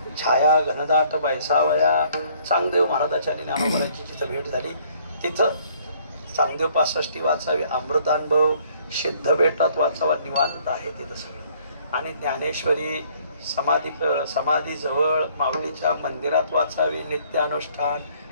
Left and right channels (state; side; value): inverted; both; correlation -0.61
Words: छाया घनदाट बैसावया. चांगदेव महाराजाच्या आणि ज्ञानोबाची जिथं भेट झाली तिथं चांगदेव 65 वाचावी. अमृतानुभव सिद्ध बेटात वाचावा. निवांत आहे तिथं सगळं. आणि ज्ञानेश्वरी समाधी जवळ माऊलीच्या मंदिरात वाचावी. नित्य अनुष्ठान.